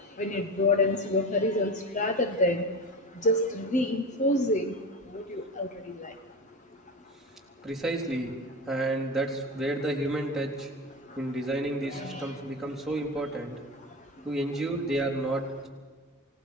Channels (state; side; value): normal; both; correlation 0.25